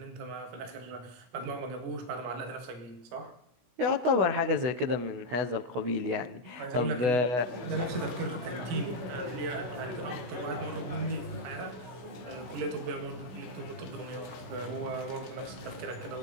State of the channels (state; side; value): late; left; 16 ms